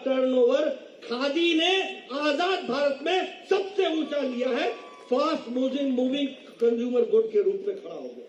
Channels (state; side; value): identical; both; correlation 1.00